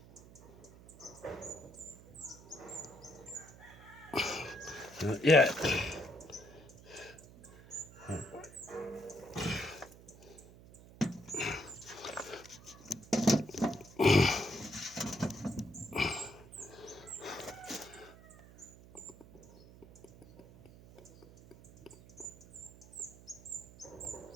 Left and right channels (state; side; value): noise; right; hum, 20 dB below the sound